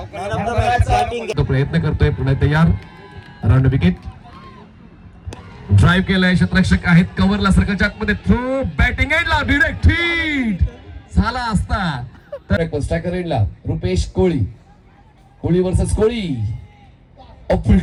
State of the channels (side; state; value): both; identical; correlation 1.00